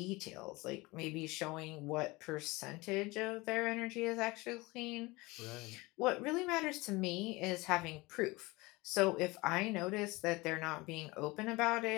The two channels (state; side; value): quieter; right; 22.7 dB